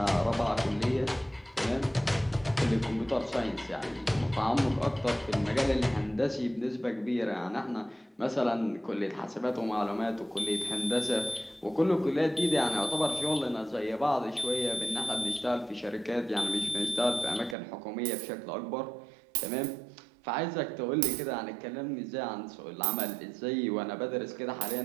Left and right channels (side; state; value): left; drops out; at 17.6 s